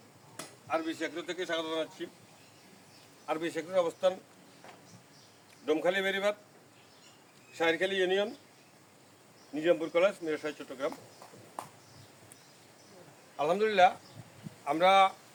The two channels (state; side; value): identical; both; correlation 1.00